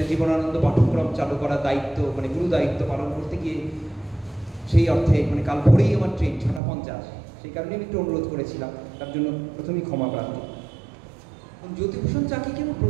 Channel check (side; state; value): left; drops out; at 6.6 s